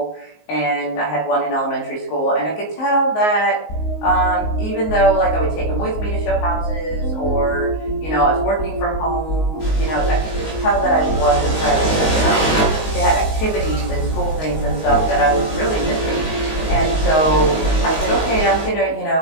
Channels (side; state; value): right; late; 19 ms